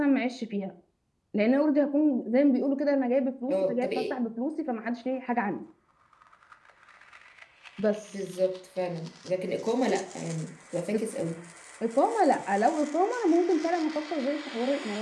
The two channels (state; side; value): identical; both; correlation 1.00